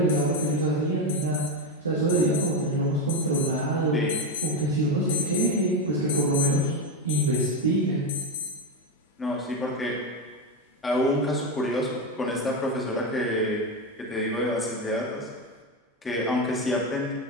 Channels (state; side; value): normal; both; correlation 0.13